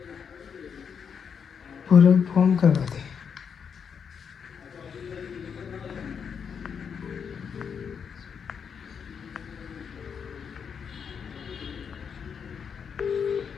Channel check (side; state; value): right; quieter; 6.8 dB